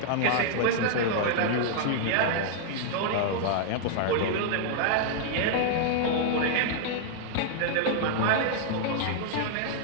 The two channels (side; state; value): both; different; correlation -0.01